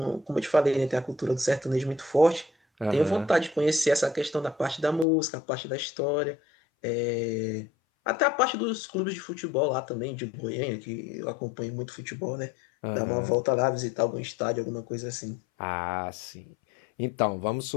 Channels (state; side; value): drops out; right; at 5.1 s